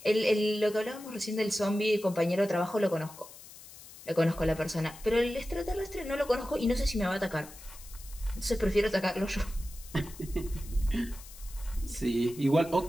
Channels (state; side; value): noise; left; hiss, 18 dB below the sound